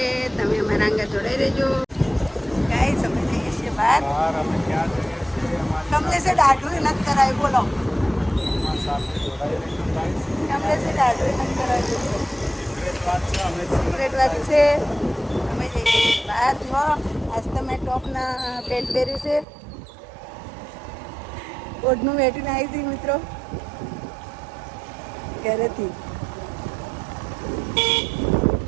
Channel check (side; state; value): left; drops out; at 19.5 s